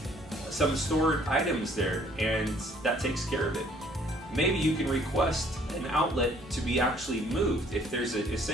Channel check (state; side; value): normal; both; correlation 0.60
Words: some stored items there and that takes care of it. Maybe you can request an outlet to be actually moved. If there's an